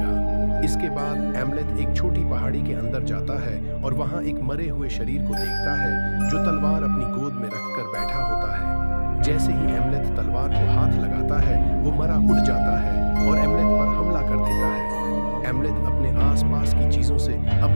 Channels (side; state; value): both; inverted; correlation -1.00